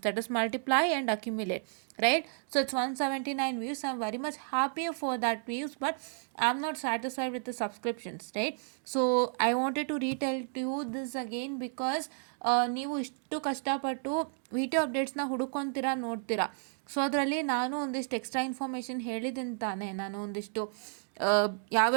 that is multiply and accumulate, right? So it's 179 views. I'm very much happy for that views, but I'm not satisfied with the subscriptions, right? So I wanted to retell to you this again because ನೀವು ಇಷ್ಟು ಕಷ್ಟಪಟ್ಟು video ಅಪ್ಡೇಟ್ಸ್ನ ಹುಡುಕೊಂತೀರಾ, ನೋಡ್ತೀರಾ. So ಅದರಲ್ಲಿ ನಾನು ಒಂದಿಷ್ಟು extra information ಹೇಳಿದ್ದೀನಿ ತಾನೇ, ನಾನು ಒಂದಿಷ್ಟು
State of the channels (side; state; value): left; silent; 56 dB below the other